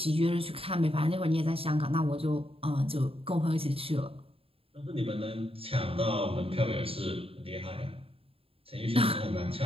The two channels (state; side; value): late; left; 0.27 ms